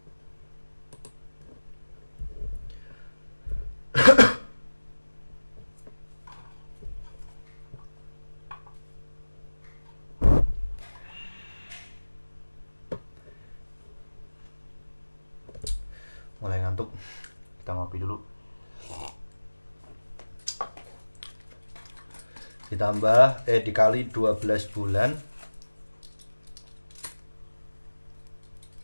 mulai ngantuk, kita ngopi dulu. Ditambah dikali 12 bulan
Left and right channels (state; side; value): inverted; both; correlation -1.00